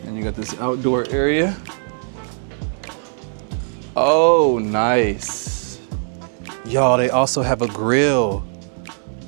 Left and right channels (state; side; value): silent; left; digital silence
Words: And you got this outdoor area. Oh, nice. Y'all, they also have a grill.